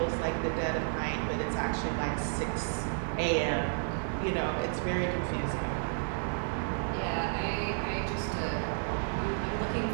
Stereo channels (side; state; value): left; silent; digital silence